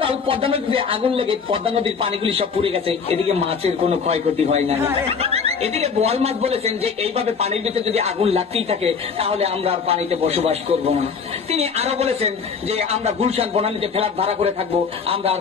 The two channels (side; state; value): right; quieter; 5.8 dB